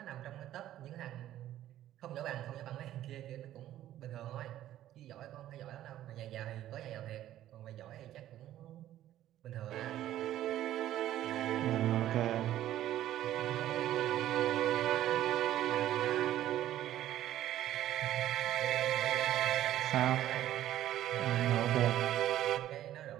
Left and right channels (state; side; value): quieter; left; 12.9 dB